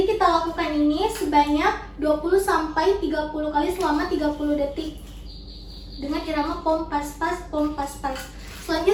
kita lakukan ini sebanyak 20-30 kali selama 30 detik dengan irama pom pas-pas, pom pas-pas.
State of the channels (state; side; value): identical; both; correlation 1.00